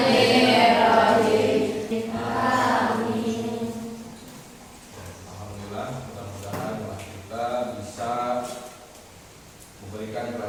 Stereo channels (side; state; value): both; identical; correlation 1.00